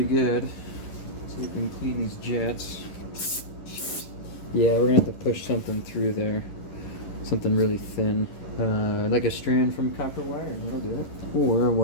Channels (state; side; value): late; right; 11 ms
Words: good. So we can clean these jets. Yeah, we're going to have to push something through there. Something really thin. Like a strand from copper wire, that'll do it. Or a